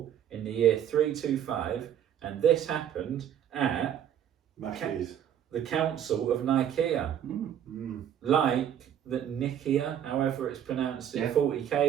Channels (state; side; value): quieter; left; 9.8 dB